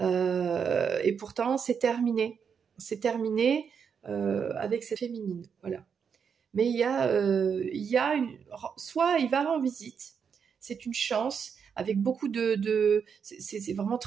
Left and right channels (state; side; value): quieter; left; 6.7 dB